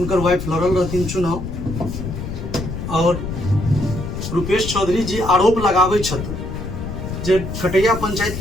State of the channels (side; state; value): left; noise; rumble, 6 dB below the sound